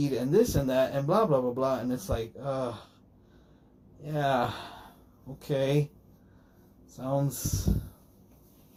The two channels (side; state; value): both; identical; correlation 1.00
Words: and this and that and blah, blah, blah, blah. And it's like, yeah, okay. Sounds